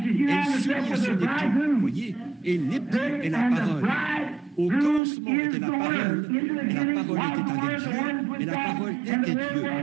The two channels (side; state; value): left; drops out; at 5.0 s